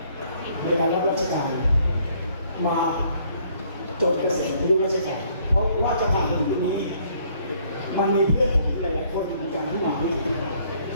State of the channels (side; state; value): both; inverted; correlation -0.64